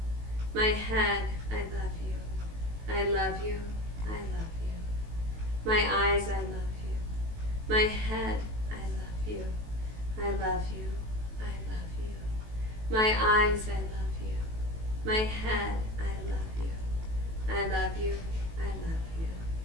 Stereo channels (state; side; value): late; left; 18 ms